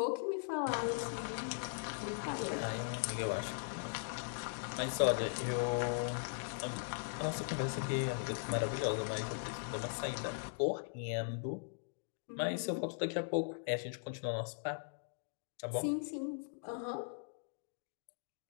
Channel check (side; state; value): right; silent; digital silence